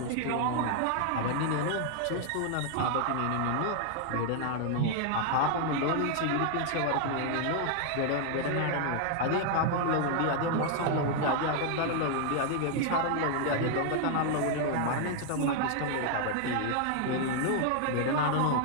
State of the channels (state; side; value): different; both; correlation 0.00